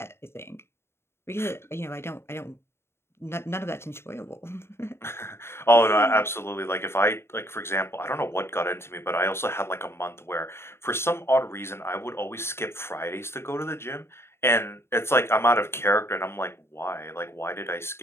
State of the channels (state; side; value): late; right; 0.12 ms